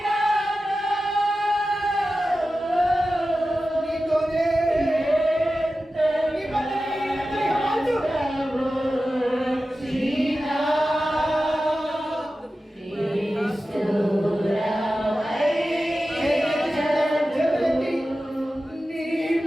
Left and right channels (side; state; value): both; normal; correlation 0.94